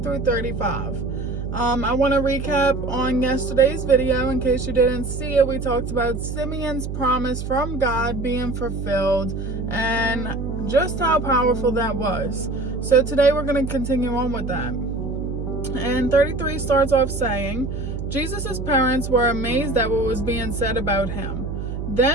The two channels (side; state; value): right; noise; hum, 5 dB below the sound